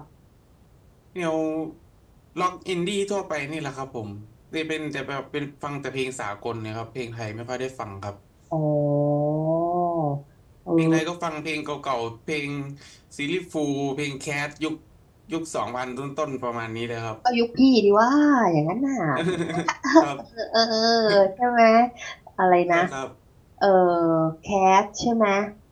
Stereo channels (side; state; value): both; identical; correlation 1.00